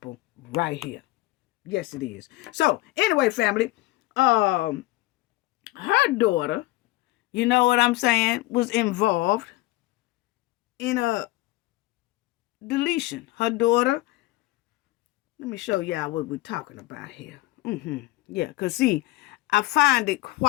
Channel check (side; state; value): right; quieter; 19.0 dB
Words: right here. Yes, it is. So, anyway, family, her daughter, you know what I'm saying, was involved in a deletion. Her daughter, let me show y'all what we're talking about here. Yeah, because see, I find it